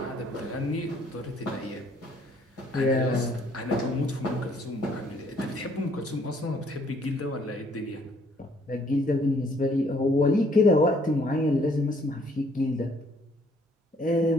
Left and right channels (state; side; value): normal; both; correlation 0.63